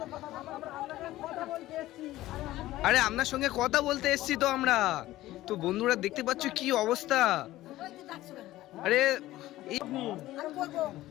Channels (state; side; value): quieter; right; 15.9 dB